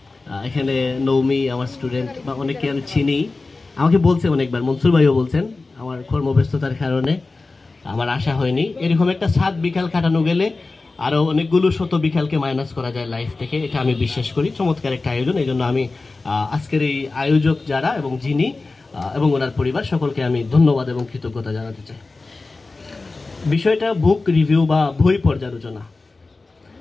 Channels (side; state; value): right; quieter; 3.6 dB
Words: এখানে নৌমি আমার স্টুডেন্ট বা অনেকে আমি চিনি, আমাকে বলছে অনেকবার, মনসুর ভাইও বলছেন, আমার কর্মব্যস্ততার কারণে আমার আশা হয়নি। এরকম একটা 7 বিকাল কাটানো গেলে আরো অনেকগুলো শত বিকালকে মাইনাস করা যায় লাইফ থেকে, এটা আমি বিশ্বাস করি। চমৎকার একটা আয়োজন, এই জন্য আমি আজকের এই আয়োজক যারা এবং যিনি এবং ওনার পরিবার সকলকে আমি ধন্যবাদ এবং কৃতজ্ঞতা জানাতে চাই। বিষয়টা বুক রিভিউ বা বই পর্যালোচনা।